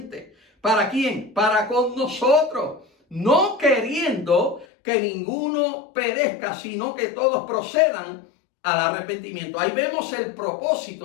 ¿Para quién? Para con nosotros. No queriendo que ninguno perezca, sino que todos procedan al arrepentimiento. Ahí vemos el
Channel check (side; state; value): right; drops out; at 4.7 s